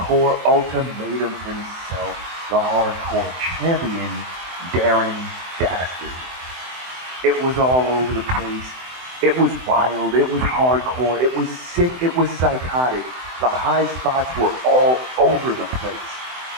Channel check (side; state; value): left; late; 24 ms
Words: ultimatum himself, the hardcore champion, Darren Dastard. It was all over the place. It was wild, it was hardcore, it was sick, it was psychotic. The high spots were all over the place.